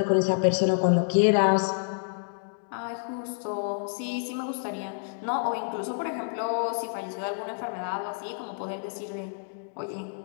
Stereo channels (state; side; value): silent; right; digital silence